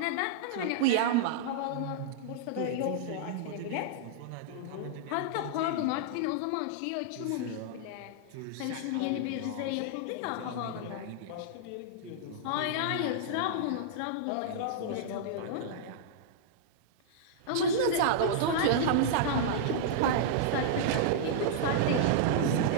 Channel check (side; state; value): both; different; correlation -0.02